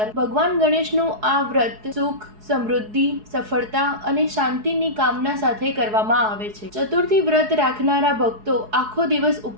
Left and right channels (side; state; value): left; late; 4.7 ms